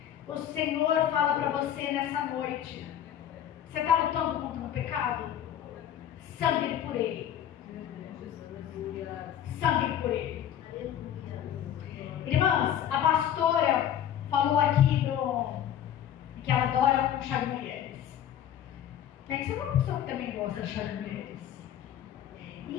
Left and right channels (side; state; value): right; quieter; 10.4 dB